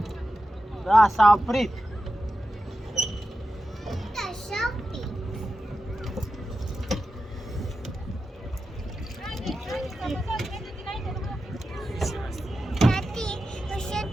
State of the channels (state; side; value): normal; both; correlation 0.91